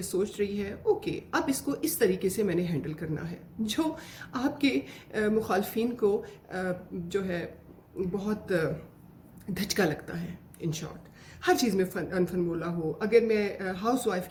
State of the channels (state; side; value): identical; both; correlation 1.00